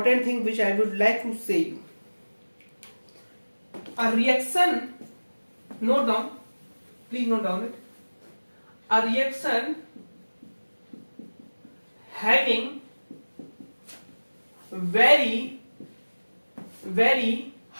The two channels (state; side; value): inverted; both; correlation -1.00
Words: thing which I would like to say you, a reaction, note down, please note down it, a reaction having very